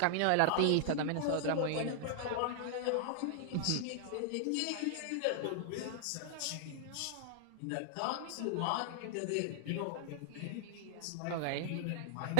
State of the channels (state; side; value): different; both; correlation 0.00